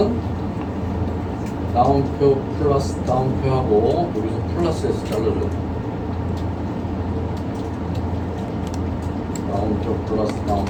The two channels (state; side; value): identical; both; correlation 1.00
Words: 다운표 플러스 다운표 하고 여기서 플러스 해서 잘라줘야 됩니다. 다운표 플러스